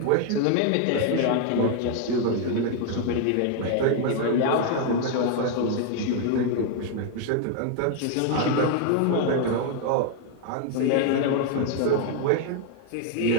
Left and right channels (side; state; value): both; different; correlation 0.00